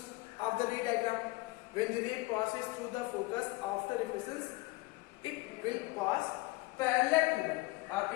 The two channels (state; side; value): quieter; right; 22.3 dB